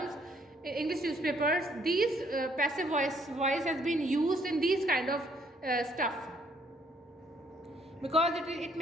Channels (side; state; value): both; normal; correlation 0.66